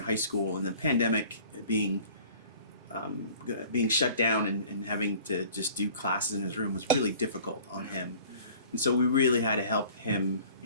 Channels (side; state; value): both; inverted; correlation -0.49